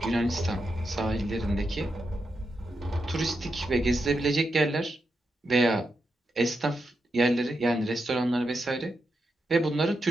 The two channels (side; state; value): both; normal; correlation 0.86